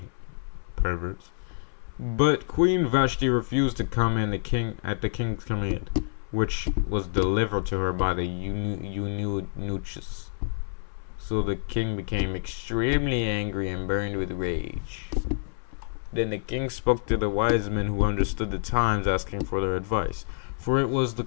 Perverts. But Queen Vashti refused to come in at the king's command, which was delivered to her by the eunuchs. So the king became extremely angry and burned with rage. Then the king spoke to the wise men who understood the times, asking for their advice. For it was the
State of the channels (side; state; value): right; silent; 60 dB below the other